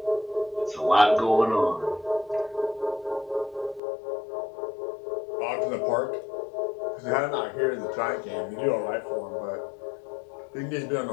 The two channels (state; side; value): drops out; right; at 3.8 s